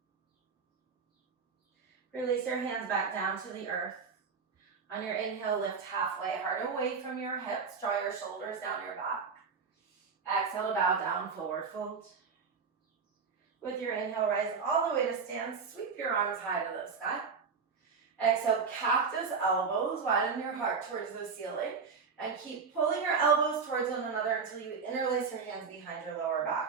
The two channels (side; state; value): left; quieter; 5.4 dB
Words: Release your hands back down to the earth. On your inhale, lift halfway, heart away from your hips. Draw your shoulders down your back. Exhale to bow down, forward fold. With your inhale, rise all the way to stand. Sweep your arms high to the sky. Exhale, cactus elbows. Widen your heart towards the ceiling. And keep pulling your elbows towards one another until you interlace your hands behind your lower